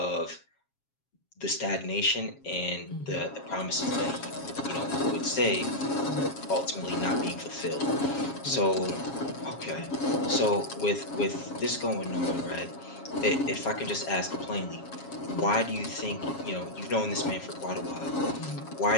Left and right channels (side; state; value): right; late; 7.3 ms